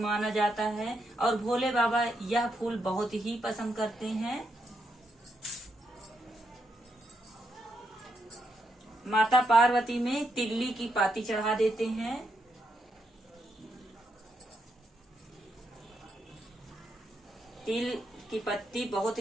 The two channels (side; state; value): both; normal; correlation 0.80